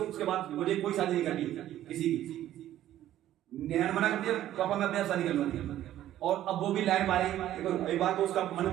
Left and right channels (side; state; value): left; quieter; 12.8 dB